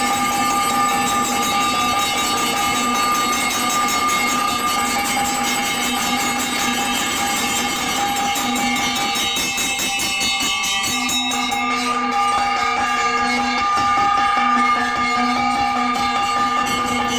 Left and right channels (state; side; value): noise; left; rumble, 21 dB below the sound